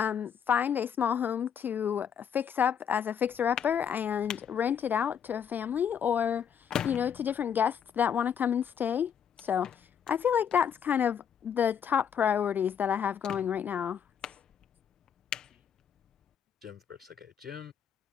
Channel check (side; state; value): right; quieter; 8.1 dB